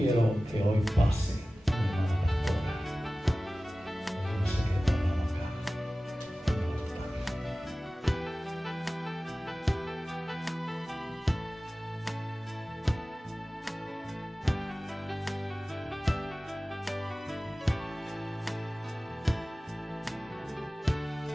que hoy pase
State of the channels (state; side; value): normal; both; correlation 0.97